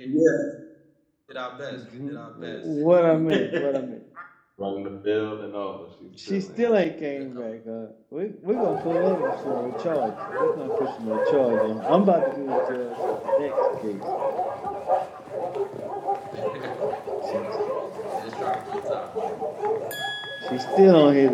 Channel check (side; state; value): both; identical; correlation 1.00